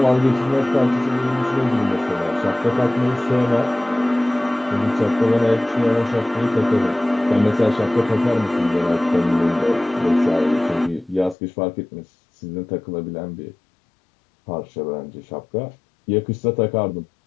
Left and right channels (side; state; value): right; drops out; at 11.4 s